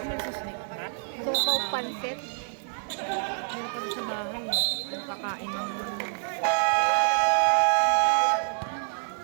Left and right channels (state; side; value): silent; left; digital silence